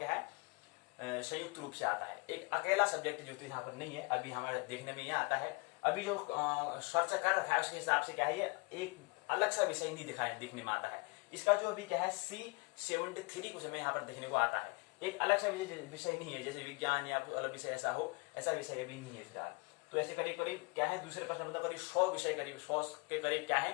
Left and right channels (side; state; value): right; quieter; 29.3 dB